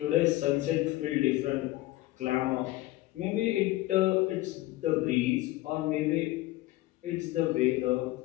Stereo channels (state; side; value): quieter; right; 17.6 dB